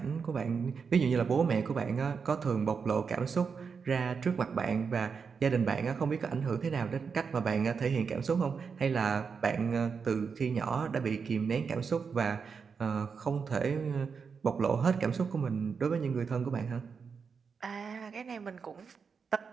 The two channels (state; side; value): quieter; left; 5.8 dB